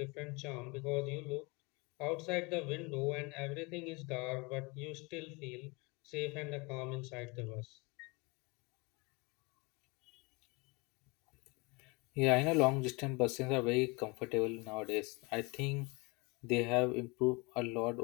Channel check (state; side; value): quieter; right; 27.4 dB